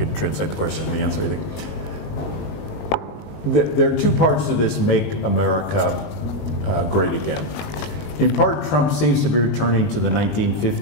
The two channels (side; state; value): right; late; 20 ms